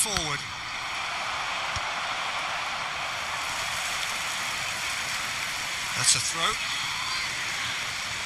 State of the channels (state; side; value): noise; left; rumble, 22 dB below the sound